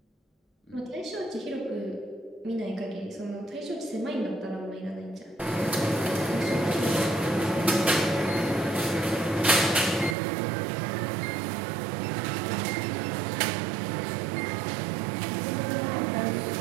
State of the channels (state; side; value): drops out; left; at 10.2 s